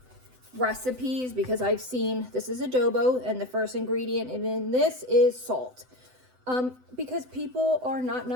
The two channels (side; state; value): left; late; 7.9 ms